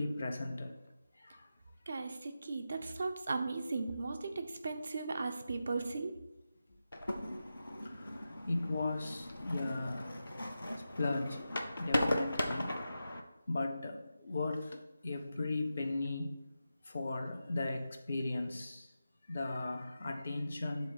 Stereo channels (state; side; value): inverted; both; correlation -0.90